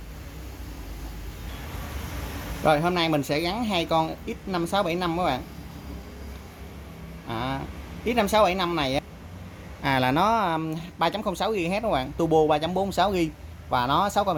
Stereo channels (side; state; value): both; identical; correlation 1.00